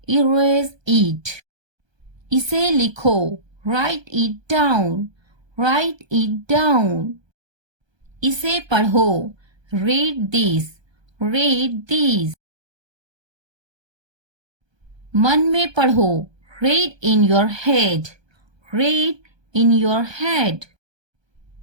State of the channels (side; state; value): left; late; 1.2 ms